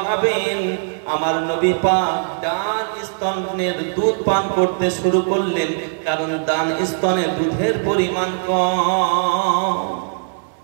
আমার নবী পাক ডান স্তনের দুধ পান করতে শুরু করলেন, কারণ ডান স্তনে দুধের পরিমাণ কম।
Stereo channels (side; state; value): left; silent; digital silence